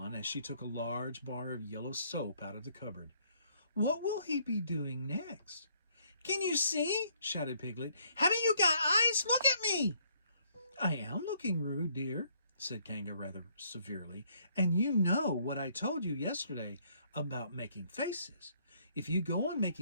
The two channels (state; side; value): inverted; both; correlation -0.66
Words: as she took a large bar of yellow soap out of the cupboard. "What will he be doing next?" "Can you see?" shouted Piglet. "Haven't you got eyes? Look at me!" "I am looking, Roo, dear," said Kanga rather severely, "and you know what I told you yesterday about making faces. If you go on